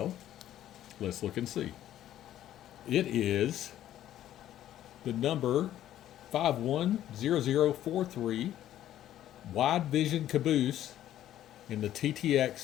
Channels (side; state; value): right; quieter; 12.3 dB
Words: let's look and see. It is the number 510043 Wide Vision Caboose in the